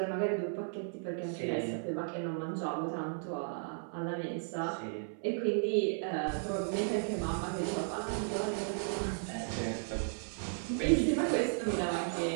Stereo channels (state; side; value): silent; left; 55 dB below the other